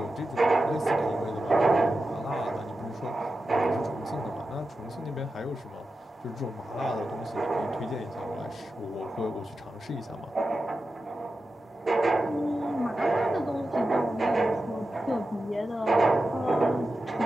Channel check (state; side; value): normal; both; correlation 0.91